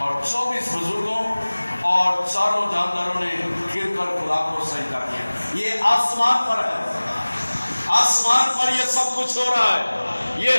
24 بزرگوں اور چاروں جانداروں نے گر کر خدا کو سجدہ کیا۔ یہ آسمان پر ہے، آسمان پر یہ سب کچھ ہو رہا ہے،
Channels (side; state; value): both; inverted; correlation -1.00